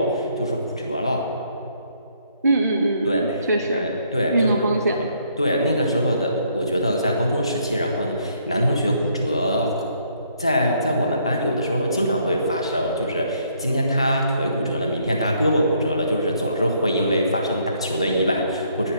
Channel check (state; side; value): inverted; both; correlation -0.68